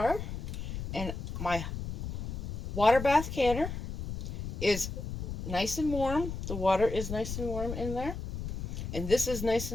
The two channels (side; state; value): left; noise; rumble, 5 dB below the sound